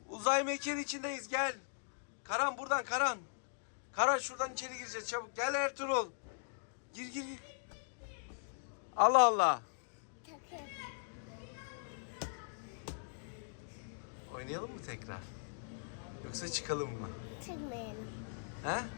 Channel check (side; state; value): right; silent; digital silence